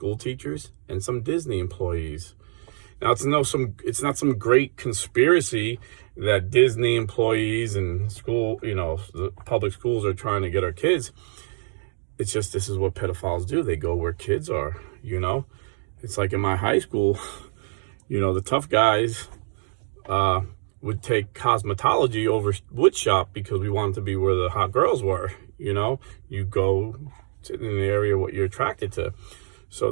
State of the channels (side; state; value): left; silent; digital silence